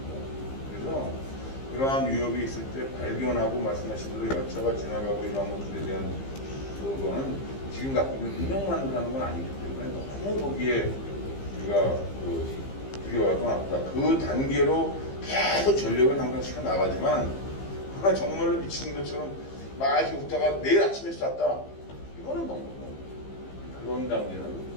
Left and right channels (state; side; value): late; right; 15 ms